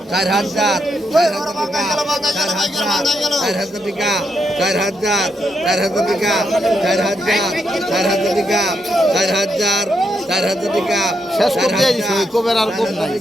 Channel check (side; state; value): both; normal; correlation 0.80